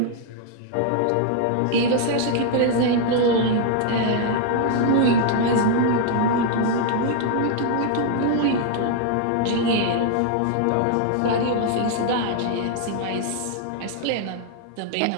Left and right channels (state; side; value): different; both; correlation 0.00